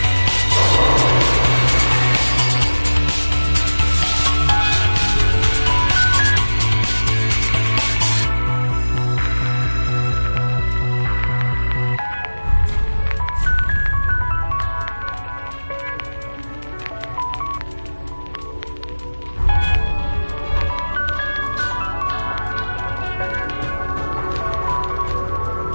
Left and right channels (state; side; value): inverted; both; correlation -1.00